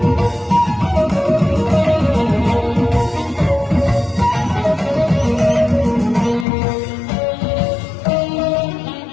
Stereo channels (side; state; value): right; drops out; at 6.5 s